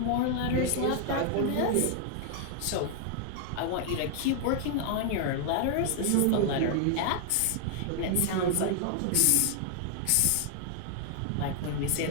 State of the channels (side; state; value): both; different; correlation 0.00